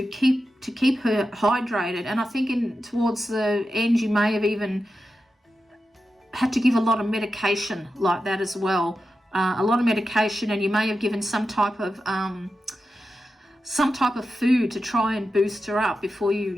her hydrated. And I think towards the end you may have even had to give a lot of medication like that as well, a lot of medication, and you may have given some type of food to try and boost her up before you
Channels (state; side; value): normal; both; correlation 0.90